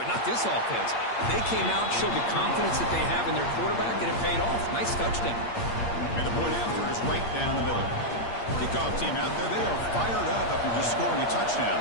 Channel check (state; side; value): late; right; 8.6 ms